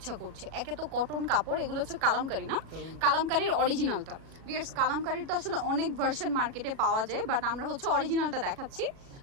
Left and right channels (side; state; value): left; late; 37 ms